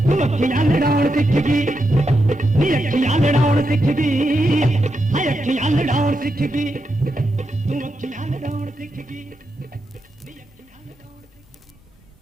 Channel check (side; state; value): both; normal; correlation 0.85